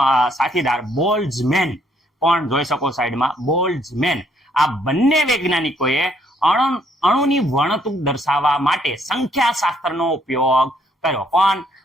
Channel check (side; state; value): both; normal; correlation 0.68